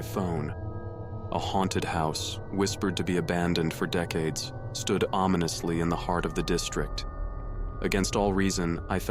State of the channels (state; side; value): identical; both; correlation 1.00